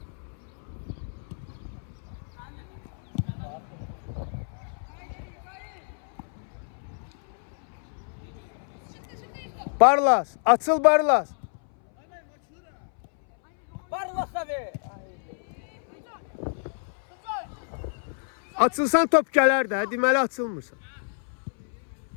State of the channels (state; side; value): silent; right; 60 dB below the other